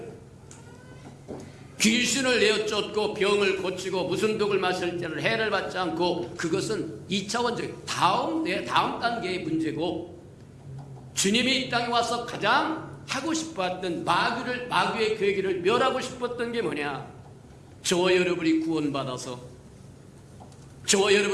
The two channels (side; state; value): both; identical; correlation 1.00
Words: 귀신을 내어 쫓고 병을 고치고 무슨 독을 마실 때를 해를 받지 않고, 그것은 2차원적 다음 단계의 문제고, 주님이 이 땅에 와서 가장 하고 싶었던 마귀의 괴기를 멸하고 싶었던 게 뭐냐? 저와 여러분이 구원받아서 저와